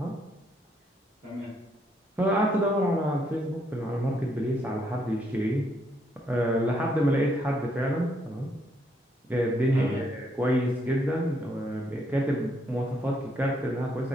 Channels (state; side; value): normal; both; correlation 0.73